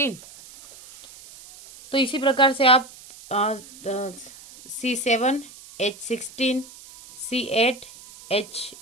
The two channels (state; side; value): noise; right; hiss, 19 dB below the sound